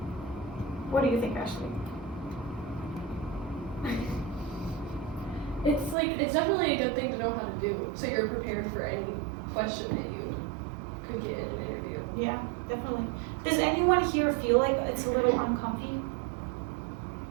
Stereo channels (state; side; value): drops out; left; at 6.0 s